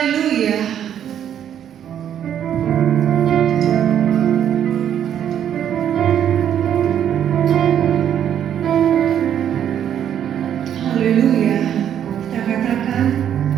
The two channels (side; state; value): left; quieter; 9.7 dB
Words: Haleluya. Kita katakan,